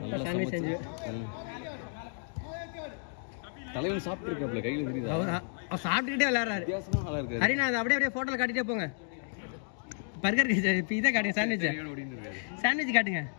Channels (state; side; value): silent; right; 57 dB below the other